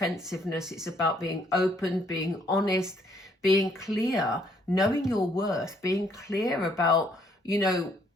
It's about being open, being honest, being clear, knowing your worth, being clear about, you know,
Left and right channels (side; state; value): both; normal; correlation 0.67